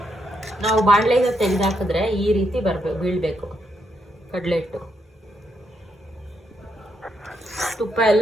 ನಾವು ಬಾಣಲೆಯಿಂದ ತೆಗೆದಾಕಿದ್ರೆ ಈ ರೀತಿ ಬೀಳಬೇಕು ಕಡಲೆ ಹಿಟ್ಟು. ತುಪ್ಪ ಎಲ್ಲ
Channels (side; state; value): both; normal; correlation 0.79